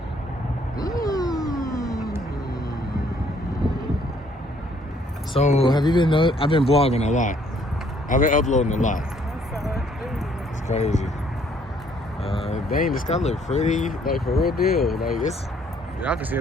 So, have you been? I've been vlogging a lot. I've been uploading a lot. It's crazy. Dang, this guy look pretty, like for real deal. Like it's, y'all can see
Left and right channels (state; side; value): normal; both; correlation 0.64